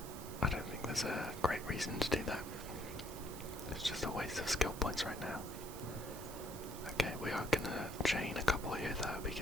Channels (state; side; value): noise; right; hiss, 14 dB below the sound